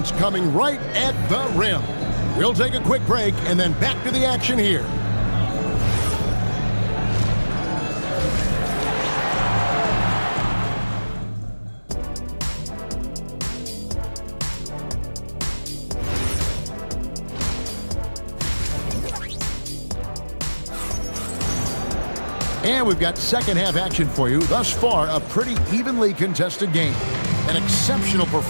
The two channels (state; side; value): inverted; both; correlation -1.00